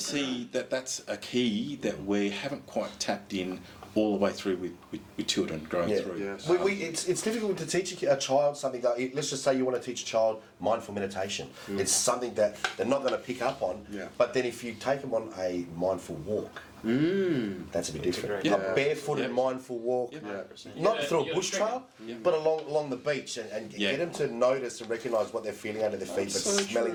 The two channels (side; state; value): both; identical; correlation 1.00